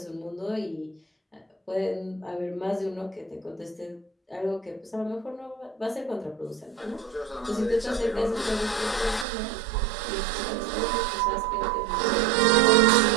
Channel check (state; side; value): drops out; left; at 9.2 s